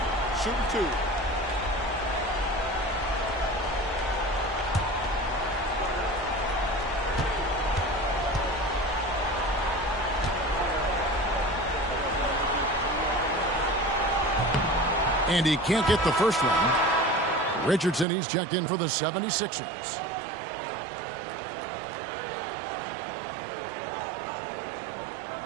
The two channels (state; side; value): drops out; left; at 18.1 s